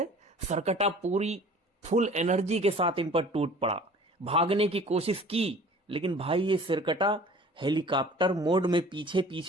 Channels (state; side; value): normal; both; correlation 0.47